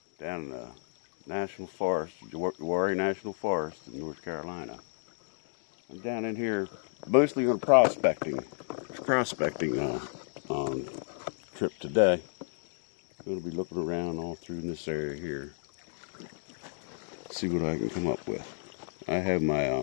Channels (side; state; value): right; silent; digital silence